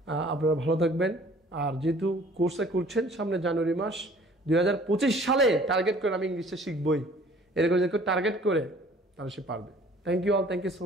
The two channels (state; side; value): normal; both; correlation 0.53